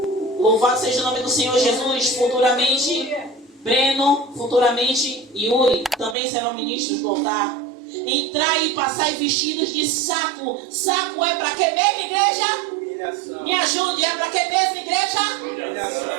Louvado seja o nome do Senhor Jesus. Futuramente Breno, futuramente Yuri também serão ministros do altar. Entrai e passai vestidos de saco. Saco é para que mesmo, igreja? Humilhação. Me ajude, é para que mesmo,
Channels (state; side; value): drops out; left; at 6.2 s